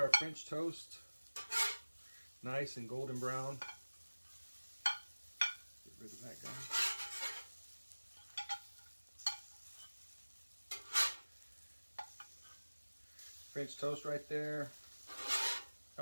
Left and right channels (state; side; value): inverted; both; correlation -1.00